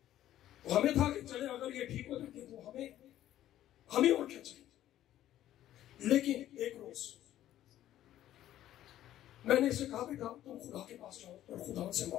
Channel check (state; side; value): quieter; right; 12.7 dB